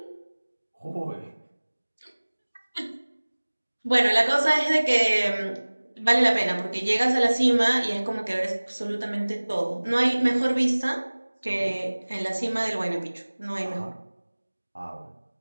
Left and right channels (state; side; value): inverted; both; correlation -1.00